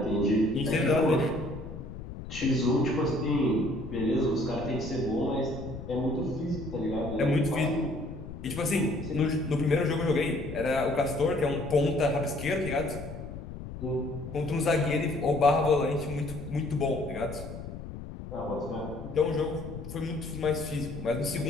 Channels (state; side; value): noise; left; rumble, 10 dB below the sound